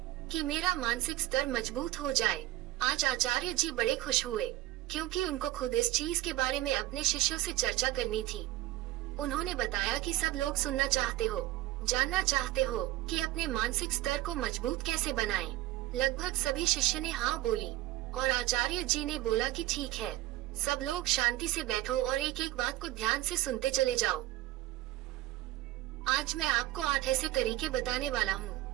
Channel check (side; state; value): left; quieter; 16.1 dB